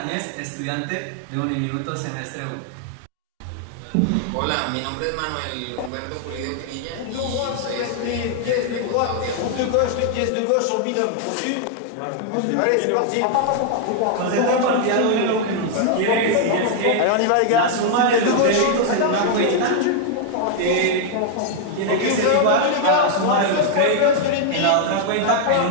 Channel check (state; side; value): different; both; correlation 0.00